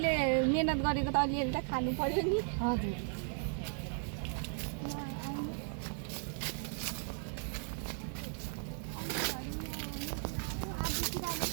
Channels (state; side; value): silent; left; 54 dB below the other